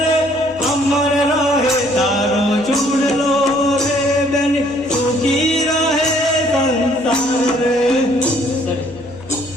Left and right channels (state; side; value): noise; right; hum, 22 dB below the sound